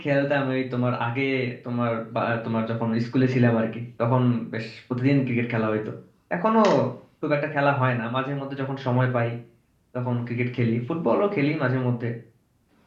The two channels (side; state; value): both; identical; correlation 1.00